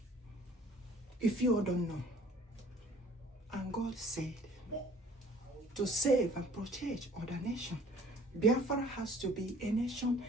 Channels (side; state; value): both; normal; correlation 0.52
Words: If you all don't know. And God said to save and protect other nations. Biafra has to be a nation